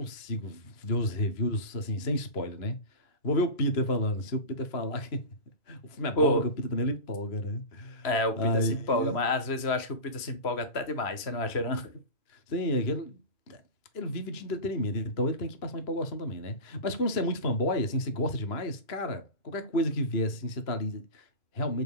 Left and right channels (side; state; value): right; late; 3.0 ms